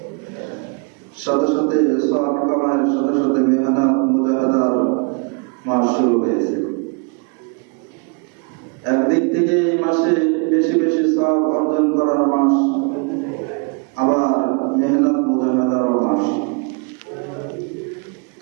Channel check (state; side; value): quieter; left; 34.4 dB